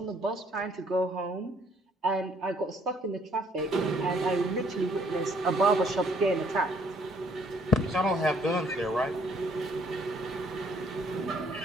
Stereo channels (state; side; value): normal; both; correlation 0.65